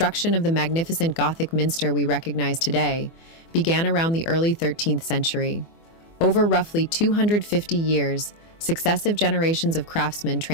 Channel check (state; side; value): late; right; 24 ms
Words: of the magnificent Gothic minster we recognize today began around the early 13th century. Over roughly 250 years, successive generations of craftsmen